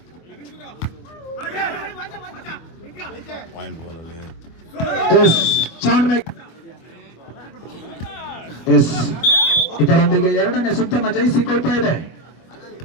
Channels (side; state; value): right; late; 24 ms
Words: ಎಸ್ ಚಾನ್ಮೇಕ್ ಎಸ್ ಇದರೊಂದಿಗೆ ಎರಡನೇ ಸುತ್ತನ್ನು ಜಯಿಸಿಕೊಳ್ತಾ ಇದೆ.